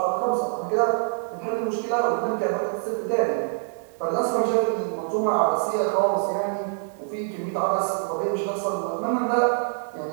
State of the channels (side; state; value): left; silent; digital silence